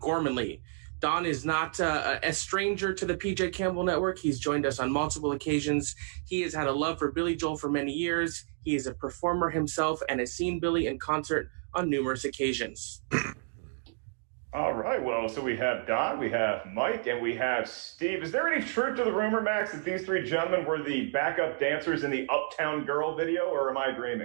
Don is not a stranger to the PJ Campbell Network. He's joined us on multiple occasions. He has had a love for Billy Joel for many years. He is a performer himself and has seen Billy in concert on numerous occasions. All right, well, so we have Don, we have Mike, and we have Steve. Is there any truth to the rumor, Max, that these three gentlemen were the backup dancers in the Uptown Girl video, or am I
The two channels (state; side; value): silent; left; digital silence